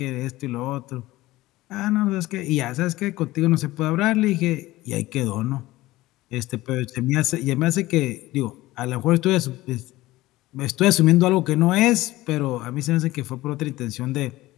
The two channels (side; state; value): right; quieter; 17.8 dB